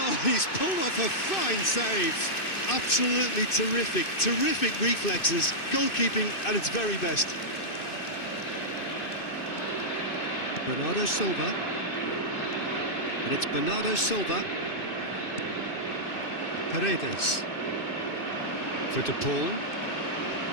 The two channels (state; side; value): late; right; 2.6 ms